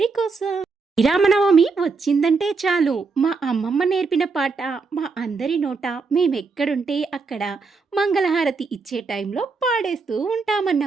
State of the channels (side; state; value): left; quieter; 4.5 dB